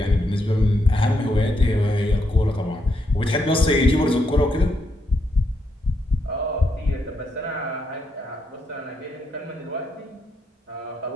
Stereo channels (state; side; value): normal; both; correlation 0.79